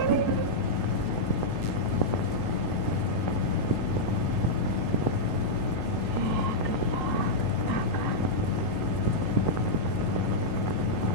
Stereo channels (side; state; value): right; late; 17 ms